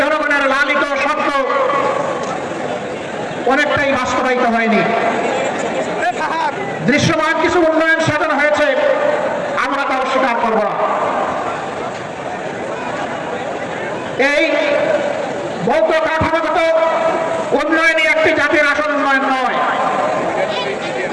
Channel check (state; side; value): identical; both; correlation 1.00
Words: জনগণের লালিত স্বপ্ন অনেকটাই বাস্তবায়িত হয়নি। দৃশ্যমান কিছু উন্নয়ন সাধন হয়েছে, আমরা তা অস্বীকার করব না। ভৌত কাঠামোগত উন্নয়নই একটি জাতির আসল উন্নয়ন নয়।